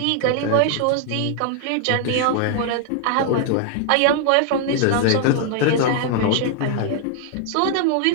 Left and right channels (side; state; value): both; different; correlation 0.00